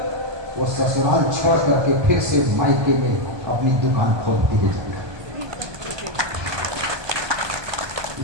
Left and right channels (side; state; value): left; late; 1.2 ms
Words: वो ससुराल छोड़ करके फिर से मायके में अपनी दुकान खोलती है।